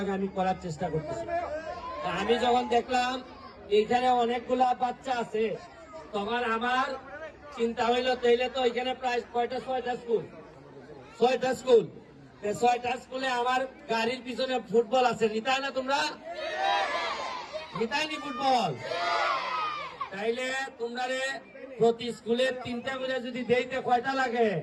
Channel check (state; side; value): identical; both; correlation 1.00